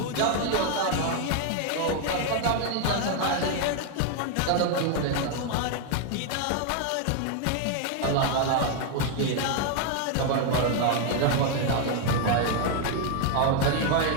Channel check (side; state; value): both; different; correlation 0.00